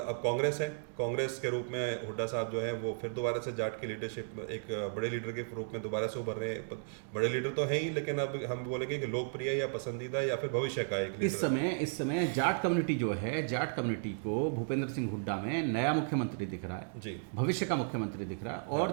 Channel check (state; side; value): silent; left; digital silence